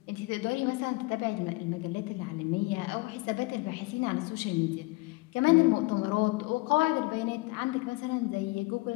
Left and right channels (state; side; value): quieter; right; 24.0 dB